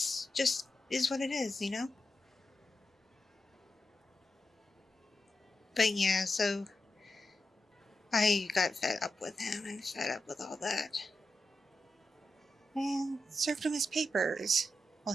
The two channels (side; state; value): both; normal; correlation 0.89